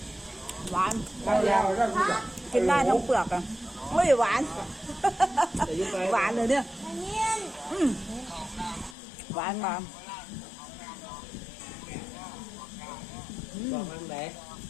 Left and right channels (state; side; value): drops out; right; at 9.0 s